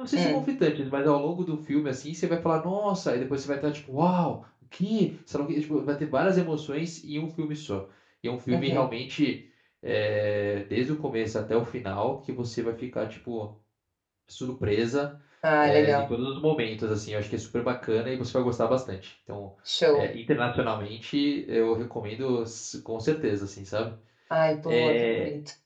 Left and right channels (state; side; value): identical; both; correlation 1.00